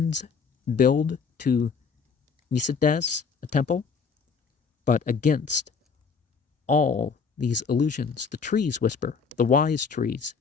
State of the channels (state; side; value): quieter; right; 5.6 dB